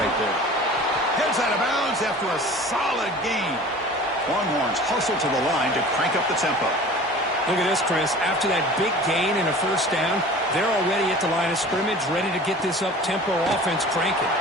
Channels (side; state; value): both; normal; correlation 0.42